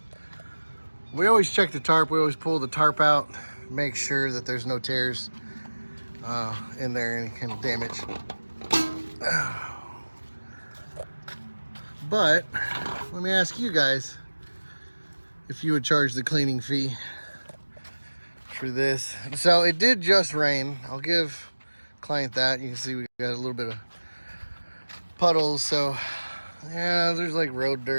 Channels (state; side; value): inverted; both; correlation -1.00